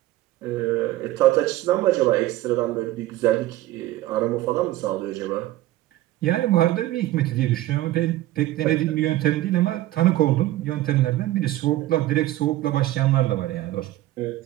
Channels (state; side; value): quieter; left; 15.6 dB